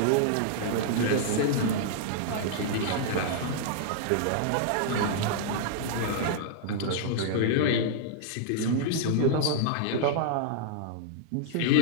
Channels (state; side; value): different; both; correlation -0.01